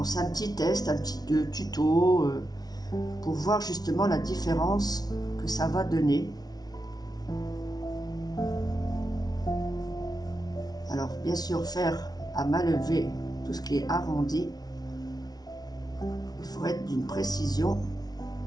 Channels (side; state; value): right; late; 0.19 ms